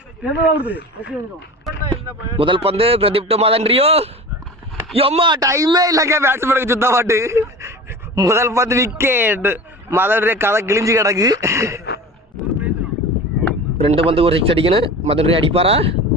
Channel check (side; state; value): both; normal; correlation 0.35